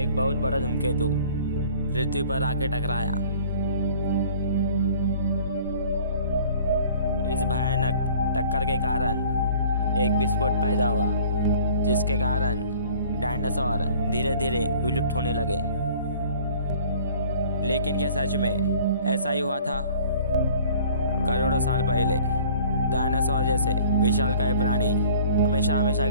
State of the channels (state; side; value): inverted; both; correlation -0.50